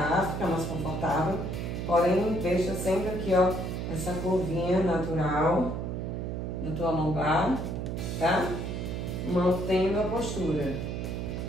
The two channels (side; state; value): right; noise; hum, 3 dB below the sound